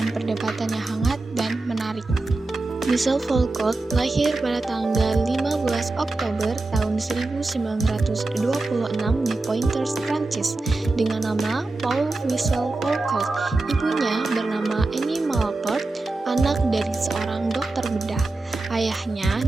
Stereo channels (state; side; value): quieter; left; 3.2 dB